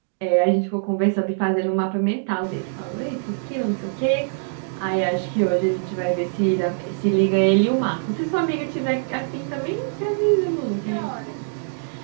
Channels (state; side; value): silent; left; digital silence